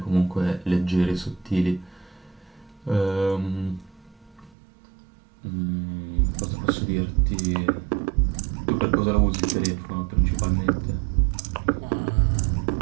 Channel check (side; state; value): left; drops out; at 4.5 s